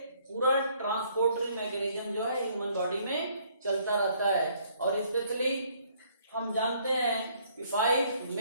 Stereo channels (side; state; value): both; inverted; correlation -0.64